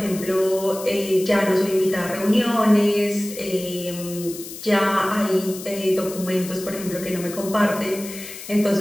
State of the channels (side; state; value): left; noise; hiss, 12 dB below the sound